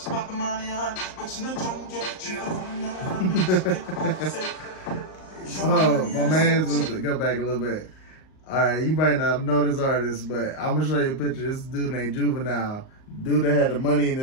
pop the money on, but you know drunk yet. She the Oh, my man's to go back a little bit. Alright, you might not know this artist, but I'm gonna show you a picture. This dude named Juvenile. Dude that had the money in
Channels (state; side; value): late; right; 38 ms